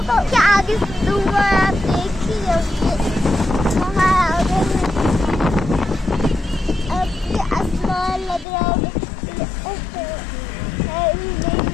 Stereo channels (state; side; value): drops out; right; at 8.5 s